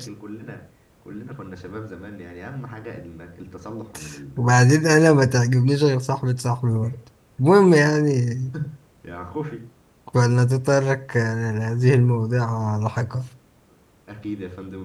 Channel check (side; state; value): both; identical; correlation 1.00